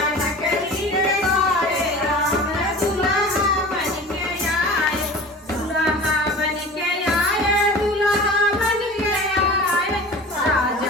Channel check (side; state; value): both; normal; correlation 0.37